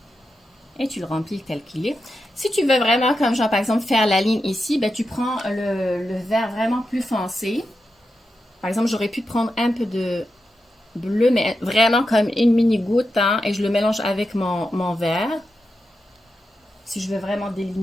Et tu le remplis tel qu'il est. Si tu veux vraiment, comme genre par exemple, faire la ligne ici, ben, tu prends le vert vraiment plus foncé. Par exemple, j'aurais pu prendre un peu de bleu, mais vraiment comme une mini goutte, hein, et je le mélange avec mon vert. Si je veux vraiment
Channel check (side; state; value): both; normal; correlation 0.88